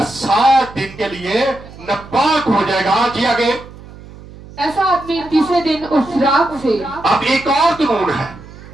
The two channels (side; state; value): right; noise; hum, 18 dB below the sound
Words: 7 दिन के लिए नापाक हो जाएगा। जी आगे। ऐसा आदमी तीसरे दिन उस राख से, अब एक और कानून है